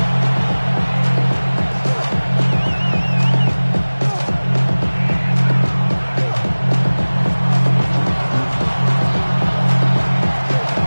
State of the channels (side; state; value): both; inverted; correlation -1.00